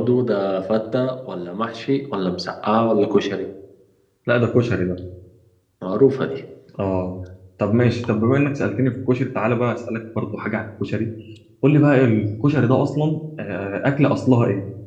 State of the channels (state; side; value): identical; both; correlation 1.00